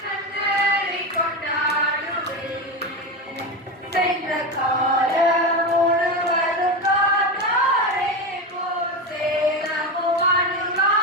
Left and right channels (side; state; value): both; normal; correlation 0.17